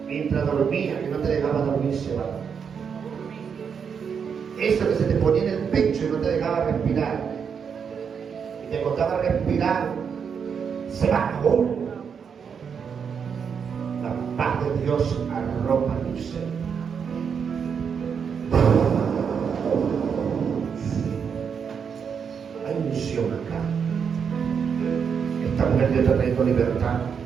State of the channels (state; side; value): quieter; left; 6.8 dB